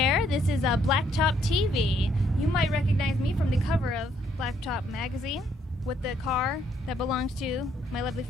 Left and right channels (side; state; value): both; normal; correlation 0.70